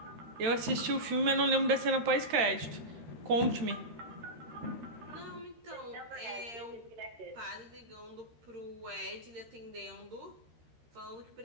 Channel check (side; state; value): left; late; 13 ms